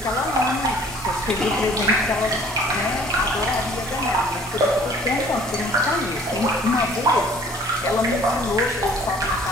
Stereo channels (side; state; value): both; normal; correlation 0.53